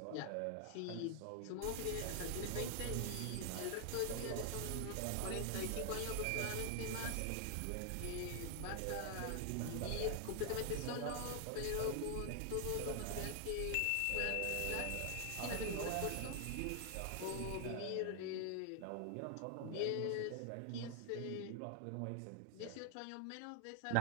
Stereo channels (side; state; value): both; different; correlation 0.00